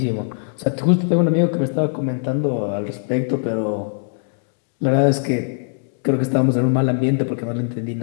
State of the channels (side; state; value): right; silent; 65 dB below the other